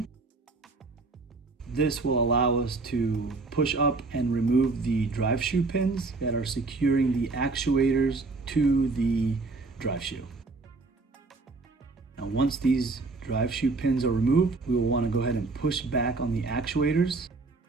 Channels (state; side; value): quieter; left; 3.7 dB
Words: This will allow us to push up and remove the drive shoe pins that are securing the actuators to the drive shoe. Now once these drive shoe pins are removed, we will want to go ahead and push back on the actuators,